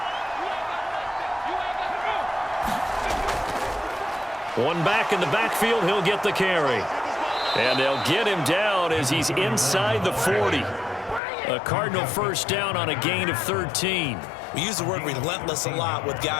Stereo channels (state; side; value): drops out; right; at 11.2 s